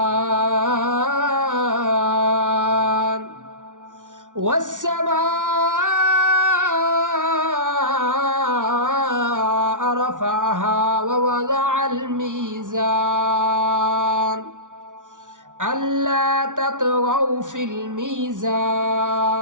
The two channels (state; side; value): late; left; 0.87 ms